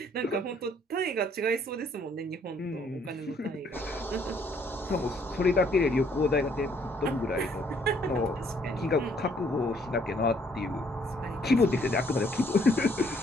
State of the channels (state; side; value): normal; both; correlation 0.65